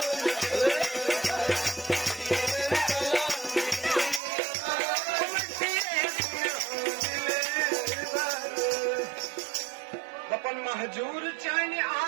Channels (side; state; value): left; drops out; at 4.2 s